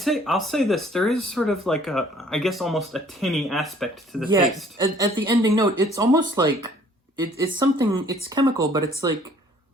I'll say this. There is sort of like I guess almost a tinny aspect to the taste. At the ending note, it's almost like it's something. It's chemical, but it's like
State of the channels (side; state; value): both; normal; correlation 0.58